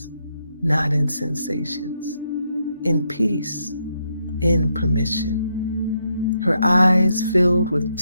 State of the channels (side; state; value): both; inverted; correlation -0.79